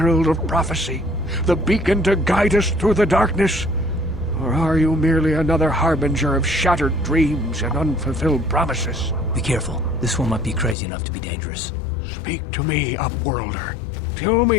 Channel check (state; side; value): drops out; right; at 10.8 s